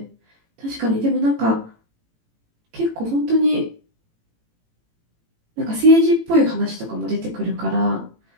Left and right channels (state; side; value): late; left; 18 ms